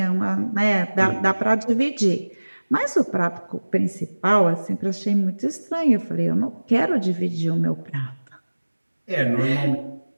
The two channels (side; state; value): both; inverted; correlation -1.00